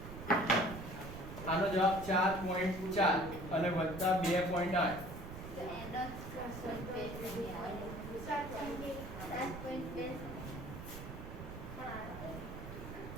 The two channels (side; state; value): right; noise; rumble, 10 dB below the sound